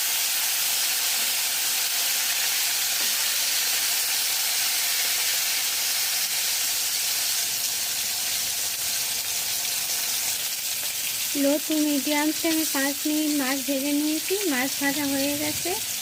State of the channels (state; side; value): identical; both; correlation 1.00